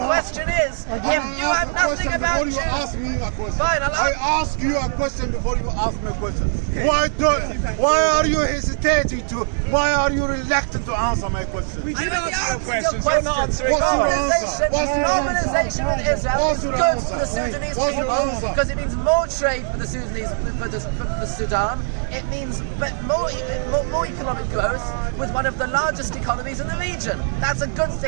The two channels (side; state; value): left; silent; digital silence